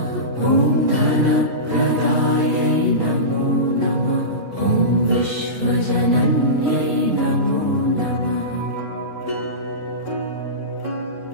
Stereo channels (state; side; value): late; left; 2.7 ms